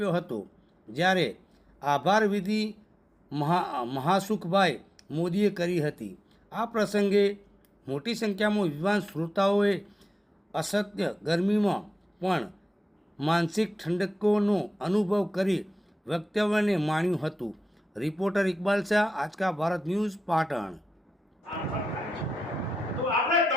હતો જ્યારે આભાર વિધિ મહાસુખભાઈ મોદીએ કરી હતી। આ પ્રસંગે મોટી સંખ્યામાં વિદ્વાન શ્રોતાઓએ અસત્ય ગરમીમાં પણ માનસિક ઠંડકોનો અનુભવ કરી વક્તવ્યને માણ્યું હતું। રિપોર્ટર ઇકબાલ શાહ, આજ કા ભારત ન્યૂઝ, પાટણ। તો આપણે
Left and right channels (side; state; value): both; normal; correlation 0.92